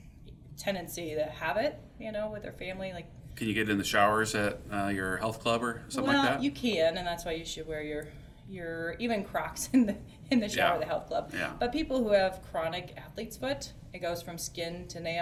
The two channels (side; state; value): both; identical; correlation 1.00